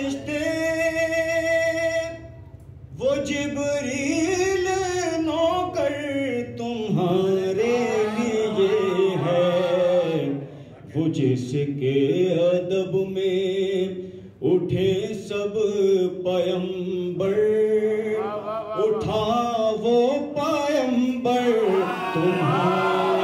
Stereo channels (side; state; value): both; identical; correlation 1.00